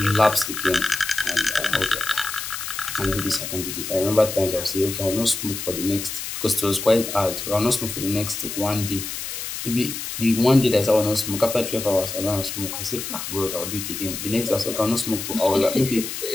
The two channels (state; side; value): noise; left; hiss, 6 dB below the sound